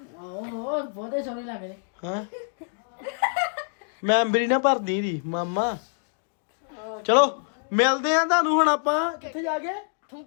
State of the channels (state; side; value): silent; right; digital silence